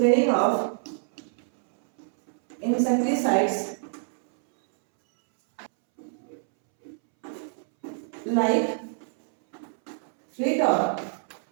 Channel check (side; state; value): left; silent; 61 dB below the other